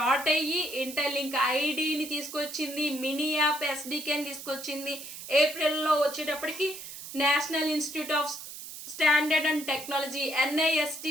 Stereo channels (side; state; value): right; noise; hiss, 11 dB below the sound